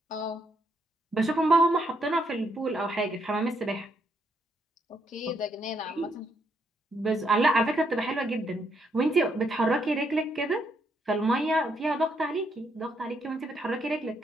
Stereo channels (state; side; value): normal; both; correlation 0.75